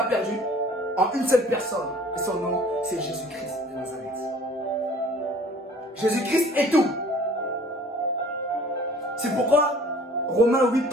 perdu en une seule personne. Et son nom, c'est Jésus-Christ de Nazareth. Jésus-Christ est tout. C'est pourquoi Romains 8,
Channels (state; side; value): normal; both; correlation 0.51